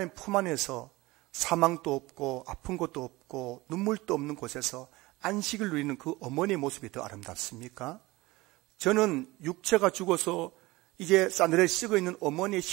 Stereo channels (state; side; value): quieter; left; 20.7 dB